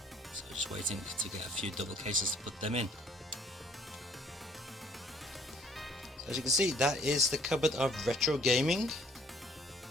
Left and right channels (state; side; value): normal; both; correlation 0.60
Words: So just waiting to get a few double cases to put them in. So as you can see, that is the cupboard of retro gaming.